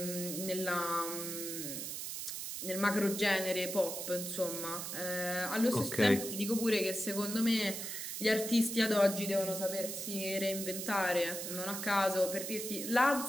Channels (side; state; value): right; noise; hiss, 5 dB below the sound